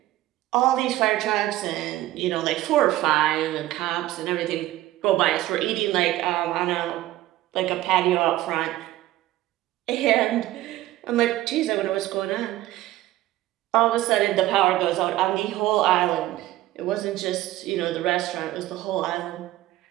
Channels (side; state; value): left; quieter; 15.5 dB